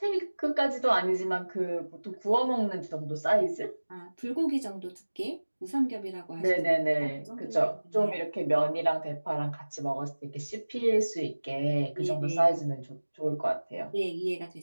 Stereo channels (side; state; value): both; inverted; correlation -1.00